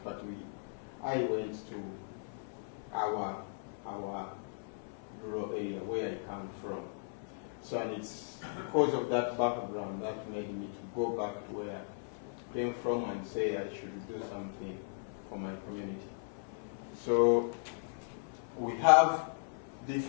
but I went to our rural area where I come from. So, and it's because of that background that made me to go back to where I came from and say I should do something for my community. So we have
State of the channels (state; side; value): silent; right; 53 dB below the other